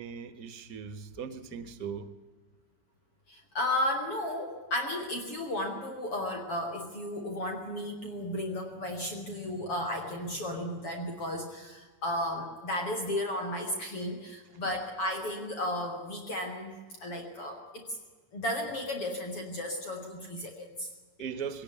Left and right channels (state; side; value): late; right; 7.1 ms